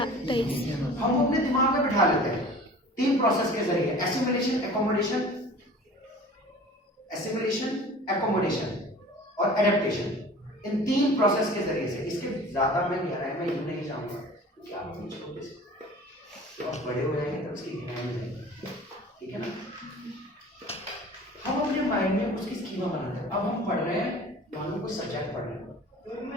हम वो अपने दिमाग में बिठा लेते हैं 3 प्रोसेस के जरिए, एसिमिलेशन, एकोमोडेशन और एडेप्टेशन। इन 3 प्रोसेस के जरिए से, इसके ज्यादा मैं गहराई में यूं नहीं जाऊंगा क्योंकि आप मुझे छोटे से तो आप बड़े हो जाएंगे तब उसकी गहराई में जाएंगे, ठीक है ना। हम अपने माइंड में उसकी स्कीमा बनाते हैं। अब हम पढ़ रहे हैं, मान लो कोई सब्जेक्ट पढ़ रहे हैं,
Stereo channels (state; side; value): normal; both; correlation 0.43